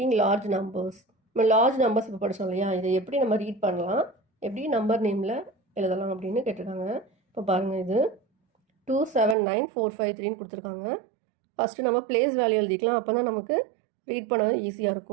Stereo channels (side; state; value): left; drops out; at 9.3 s